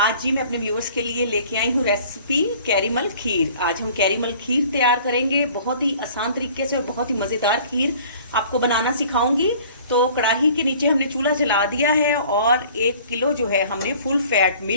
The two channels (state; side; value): inverted; both; correlation -0.50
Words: जी मैं अपने व्यूवर्स के लिए लेके आई हूँ रेसिपी कैरीमल खीर। आज हम कैरीमल खीर तैयार करेंगे, बहुत ही आसान तरीके से और बहुत ही मज़ेदार खीर आपको बनाना सिखाऊंगी। तो कढ़ाई के नीचे हमने चूल्हा जला दिया है और 1 किलो जो है हमने फुल फैट